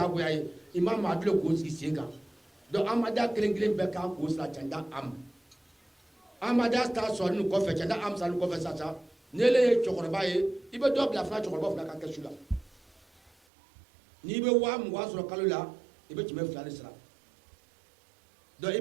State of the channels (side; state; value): left; drops out; at 13.3 s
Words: ye i ma maa dule k'o sigi sen kan donc amadiya kelen kelen bɛɛ kan k'o sira canda am amadiya ta sɔrɔ nin kɔfɛ canda am sɔrɔ nin kɔfɛ sisan n'ele ye cɛkɔrɔba ye i bɛ dɔ bila fana cɛkɔrɔba fana ka kɛsu la n'i bɛ 20,000 sɔrɔ kalo la i bɛ 200 de sara donc i